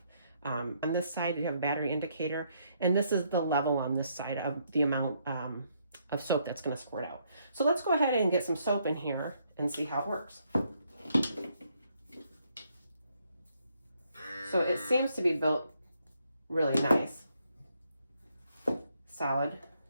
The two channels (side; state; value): both; inverted; correlation -0.73